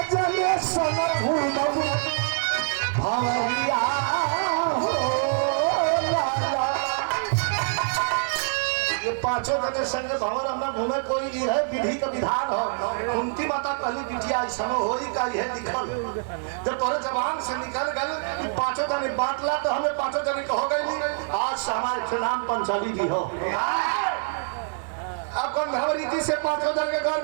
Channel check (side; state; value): left; silent; 61 dB below the other